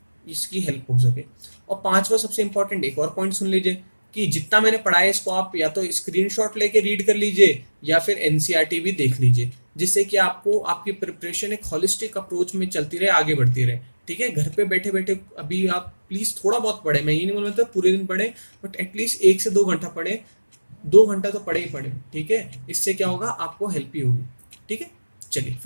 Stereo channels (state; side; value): inverted; both; correlation -1.00